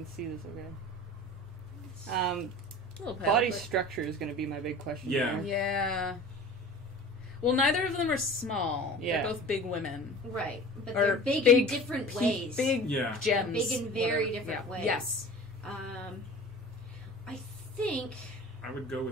see this, okay? A little pale, Body but- structure is going to be my big question. Yeah. here. Yeah. Well, neither of them are small. Yeah. They're both big women. Right. But Or they're big in different pe- ways. Big Yeah. gems. Big in very whatever. different Yeah. ways. Yes. I think... I would go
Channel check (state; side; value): normal; both; correlation 0.39